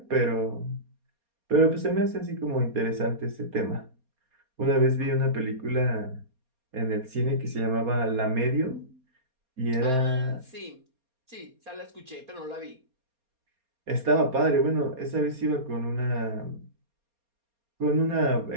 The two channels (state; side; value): late; left; 4.3 ms